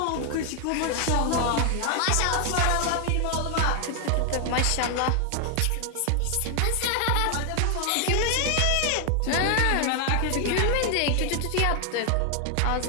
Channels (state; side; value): different; both; correlation 0.00